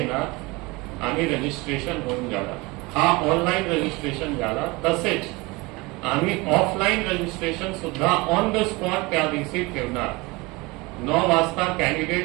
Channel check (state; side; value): quieter; left; 24.3 dB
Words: आणि रजिस्ट्रेशन होऊन जाणार. हा ऑनलाईन रजिस्ट्रेशन झाला. तसेच आम्ही ऑफलाईन रजिस्ट्रेशन सुद्धा ऑन द स्पॉट त्या दिवशी ठेवणार. 9 वाजता